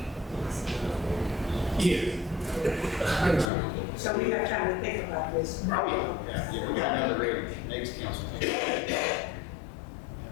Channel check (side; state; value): right; drops out; at 3.5 s